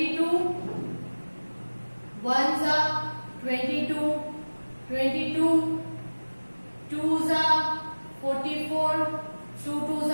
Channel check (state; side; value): inverted; both; correlation -1.00